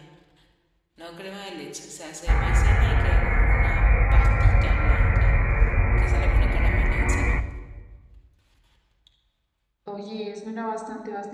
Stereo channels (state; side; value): identical; both; correlation 1.00